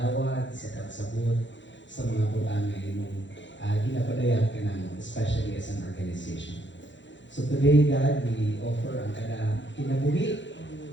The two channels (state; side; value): late; right; 0.54 ms